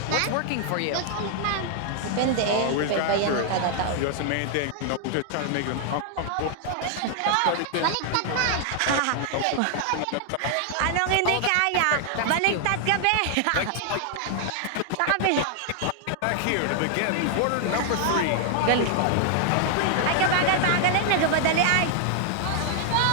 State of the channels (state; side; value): different; both; correlation 0.00